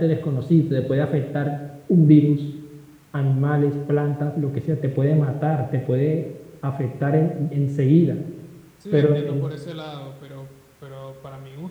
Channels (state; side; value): identical; both; correlation 1.00